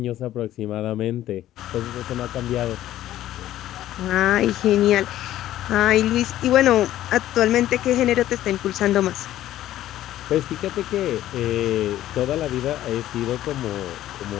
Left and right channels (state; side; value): quieter; right; 13.4 dB